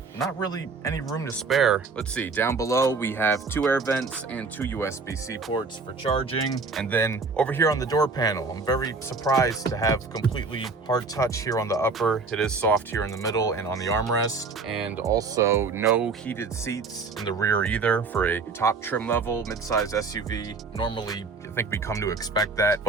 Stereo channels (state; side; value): quieter; left; 4.3 dB